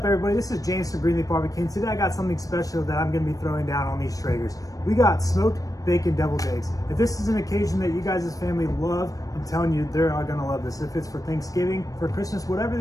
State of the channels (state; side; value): late; right; 0.17 ms